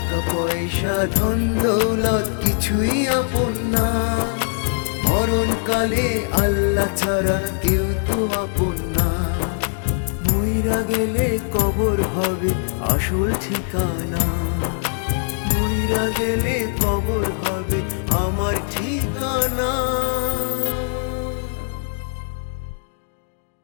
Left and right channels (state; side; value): silent; right; digital silence